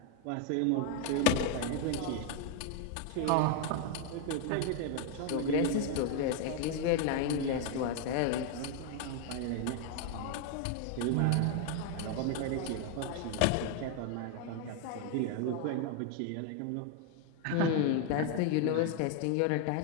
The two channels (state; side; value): different; both; correlation 0.01